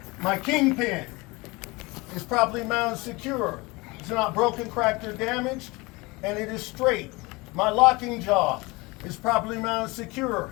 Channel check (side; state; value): right; quieter; 24.3 dB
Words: My kingpin is properly mounted, secure. It's not broken, cracked, or damaged, and it is straight. My locking jaw is properly mounted